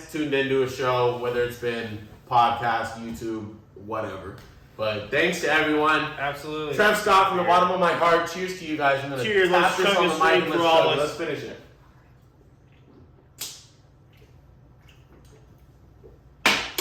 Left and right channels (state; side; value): identical; both; correlation 1.00